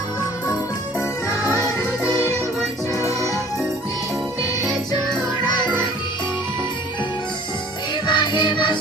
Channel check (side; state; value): both; normal; correlation 0.51